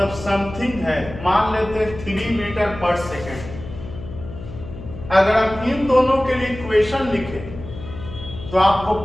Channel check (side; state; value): left; noise; hum, 12 dB below the sound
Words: समथिंग है, मान लेते 3 मीटर पर सेकेंड। अगर आप इन दोनों के लिए इक्वेशन लिखें तो आपको